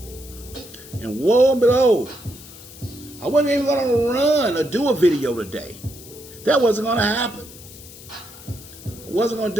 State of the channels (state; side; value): noise; left; hiss, 18 dB below the sound